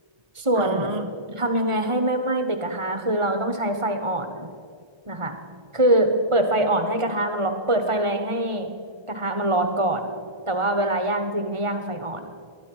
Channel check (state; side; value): late; left; 1.4 ms